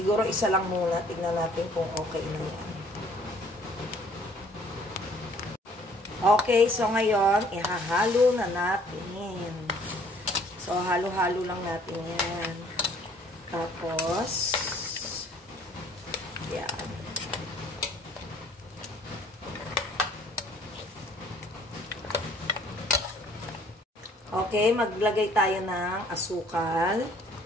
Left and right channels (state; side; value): normal; both; correlation 0.58